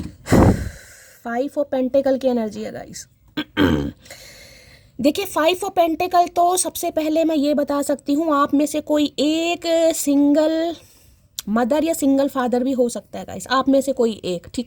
5 of pentacles की एनर्जी है गाइस। देखिए 5 ऑफ पेंटिकल तो सबसे पहले मैं ये बता सकती हूँ आप में से कोई एक सिंगल मदर या सिंगल फादर भी हो सकता है गाइस, आप में से कोई एक।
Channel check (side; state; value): both; identical; correlation 1.00